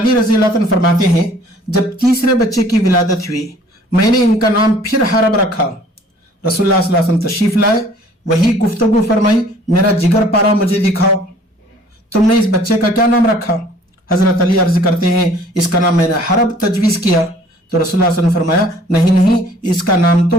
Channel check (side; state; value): both; normal; correlation 0.55